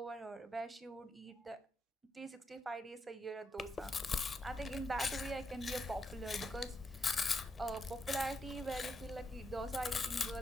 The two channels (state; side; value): normal; both; correlation 0.82